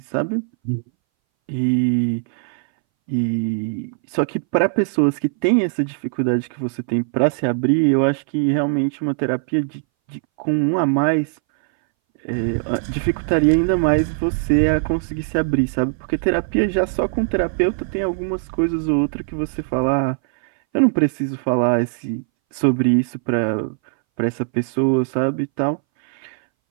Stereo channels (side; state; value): left; silent; 62 dB below the other